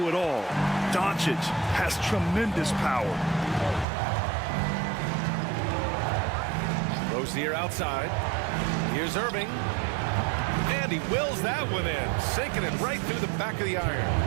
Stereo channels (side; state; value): left; drops out; at 3.9 s